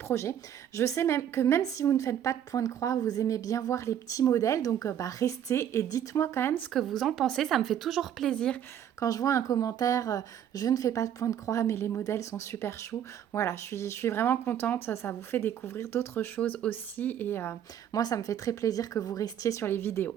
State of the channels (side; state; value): left; quieter; 9.9 dB